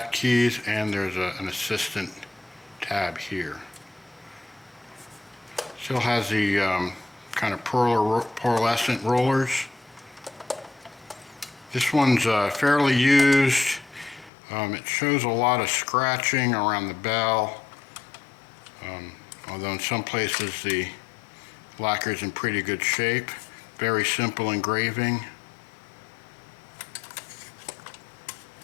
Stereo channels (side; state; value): right; drops out; at 14.3 s